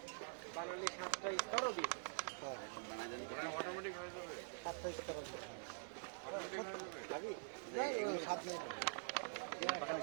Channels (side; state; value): left; silent; digital silence